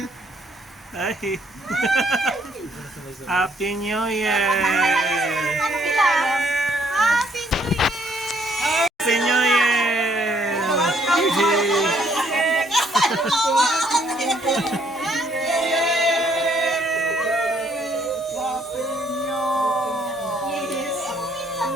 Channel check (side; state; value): both; normal; correlation 0.67